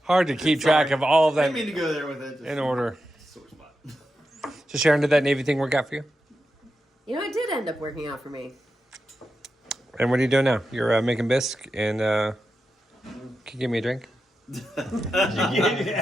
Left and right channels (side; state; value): both; normal; correlation 0.89